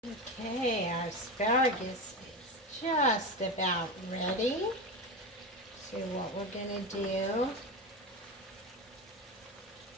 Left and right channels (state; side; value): normal; both; correlation 0.21